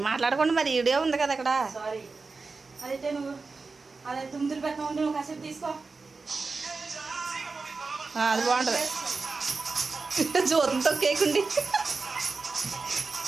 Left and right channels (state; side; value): quieter; left; 4.2 dB